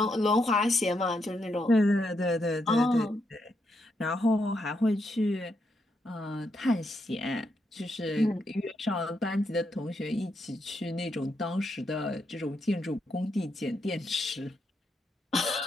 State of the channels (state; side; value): normal; both; correlation 0.80